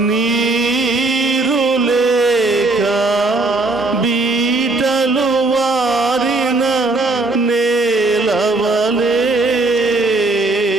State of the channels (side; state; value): left; quieter; 3.2 dB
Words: నీరు లేక బీటలు వారిన నేలవలే